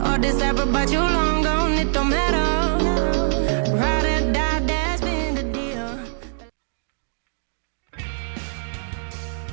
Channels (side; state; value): left; silent; digital silence